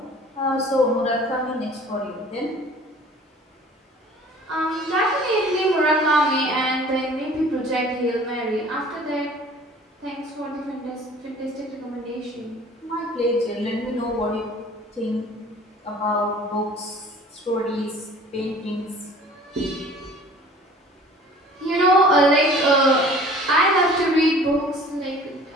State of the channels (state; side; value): normal; both; correlation 0.48